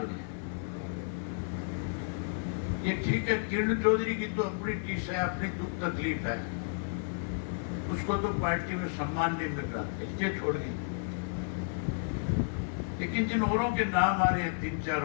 हैं? ये ठीक है, किरण चौधरी की तो अपनी टीस है, अपनी दुख तकलीफ है, उसको तो पार्टी में सम्मान नहीं मिल रहा, इसलिए छोड़ दी। लेकिन जिन औरों के नाम आ रहे हैं,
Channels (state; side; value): silent; right; 56 dB below the other